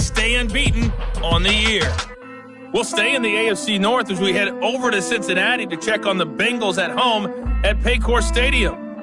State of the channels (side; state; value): both; identical; correlation 1.00